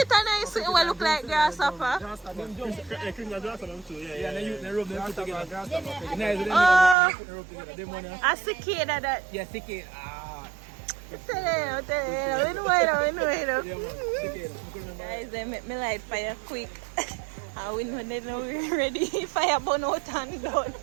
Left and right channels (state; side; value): drops out; left; at 7.0 s